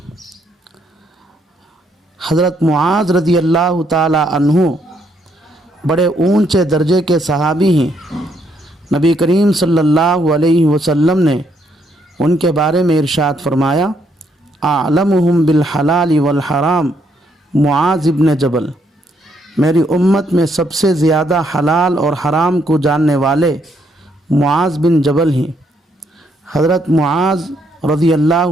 حضرت معاذ رضی اللہ تعالی عنہ بڑے اونچے درجے کے صحابی ہیں۔ نبی کریم صلی اللہ علیہ وسلم نے ان کے بارے میں ارشاد فرمایا اعلمہم بالحلال والحرام معاذ ابن جبل، میری امت میں سب سے زیادہ حلال اور حرام کو جاننے والے معاذ بن جبل ہیں۔ حضرت معاذ رضی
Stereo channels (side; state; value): both; normal; correlation 0.73